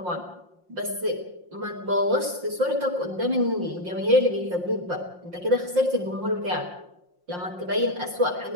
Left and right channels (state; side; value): late; left; 5.6 ms